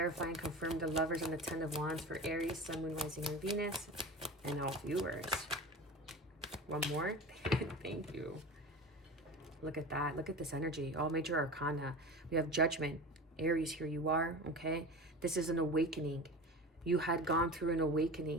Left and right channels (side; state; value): both; normal; correlation 0.32